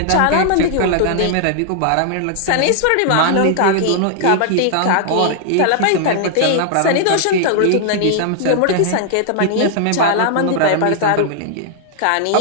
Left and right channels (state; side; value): different; both; correlation -0.01